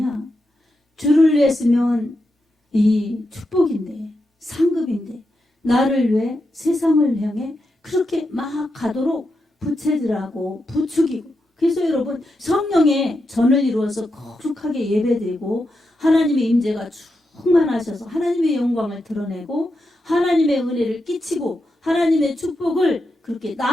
주를 위했으면 이 축복인데 상급인데 나를 위해 세상을 향해 그렇게 막 가도록 부채질하고 부추기고 그래서 여러분 성령의 전을 이루어서 거룩하게 예배드리고 하나님의 임재가 충만하셔서 하나님의 영광을 드러내고 하나님의 은혜를 끼치고 하나님의 축복을 그렇게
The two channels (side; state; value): both; normal; correlation 0.86